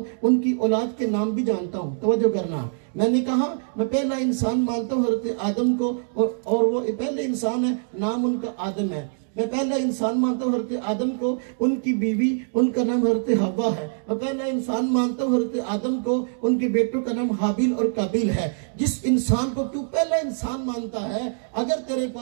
उनकी औलाद के नाम भी जानता हूँ। तवज्जो करना, मैंने कहा मैं पहला इंसान मानता हूँ हज़रत आदम को, और वो पहले इंसान है, नाम उनका आदम है। मैं पहला इंसान मानता हूँ हज़रत आदम को, उनकी बीवी उनका नाम हज़रत हव्वा है। मैं पहला इंसान मानता हूँ हज़रत आदम को, उनके बेटों का नाम हाबिल और काबिल है। जिस इंसान को तू पहला इंसान मानता है, अगर तेरे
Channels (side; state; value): left; silent; digital silence